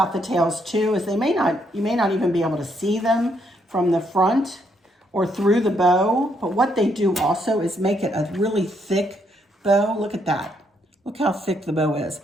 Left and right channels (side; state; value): both; normal; correlation 0.74